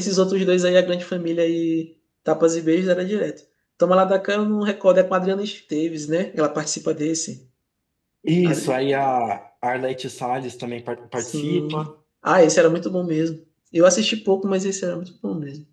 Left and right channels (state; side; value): identical; both; correlation 1.00